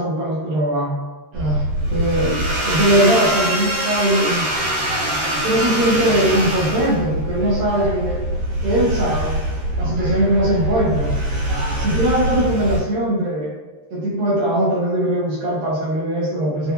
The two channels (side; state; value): left; late; 13 ms